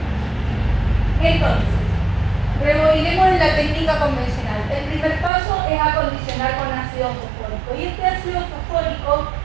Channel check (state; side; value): drops out; left; at 5.3 s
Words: Entonces, rebobinemos en la técnica convencional. El primer paso es acondicionar con ácido fosfórico. Y este ácido fosfórico